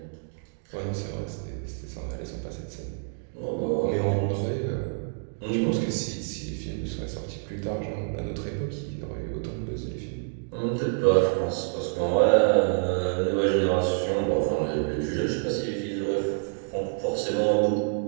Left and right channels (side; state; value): left; silent; digital silence